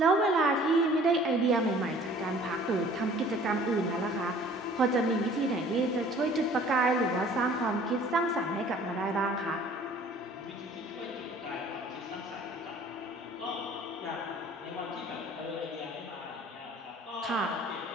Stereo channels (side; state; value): both; normal; correlation 0.51